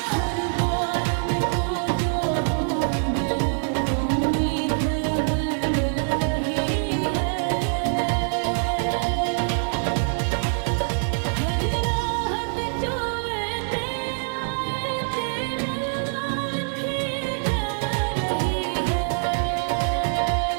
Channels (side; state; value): left; silent; digital silence